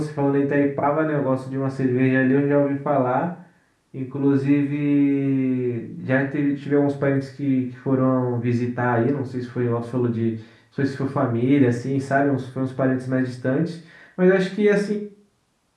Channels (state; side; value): identical; both; correlation 1.00